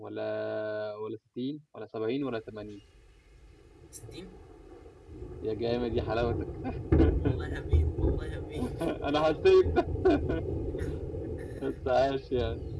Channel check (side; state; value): both; identical; correlation 1.00